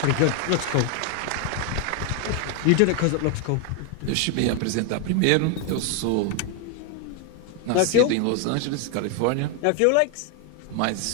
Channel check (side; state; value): both; different; correlation 0.01